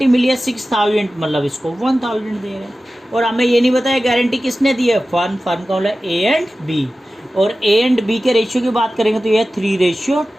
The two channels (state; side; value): normal; both; correlation 0.95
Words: मिली है 6,000, मतलब इसको 1,000 दे रहे हैं। और हमें ये नहीं बताया गारंटी किसने दी है, फर्म का मतलब ए एंड बी। और ए एंड बी के रेशियो की बात करेंगे तो ये है